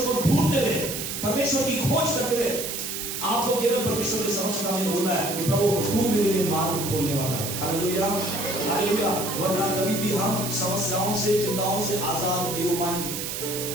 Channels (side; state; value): right; noise; hiss, 5 dB below the sound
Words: को ढूंढते हुए, परमेश्वर की खोज करते हुए आपको केवल परमेश्वर के समक्ष में बोलना है कि प्रभु तू मेरे लिए मार्ग खोलने वाला है। Hallelujah, hallelujah. वरना कभी भी हम समस्याओं से, चिंताओं से आजाद नहीं हो पाएंगे।